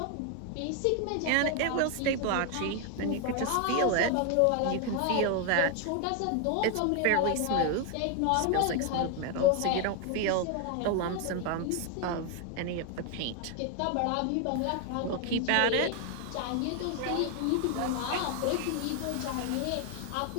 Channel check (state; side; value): different; both; correlation 0.00